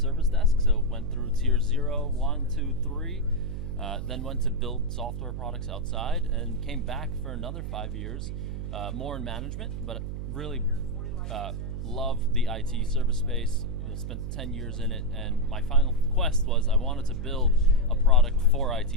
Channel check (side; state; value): right; noise; hum, 5 dB below the sound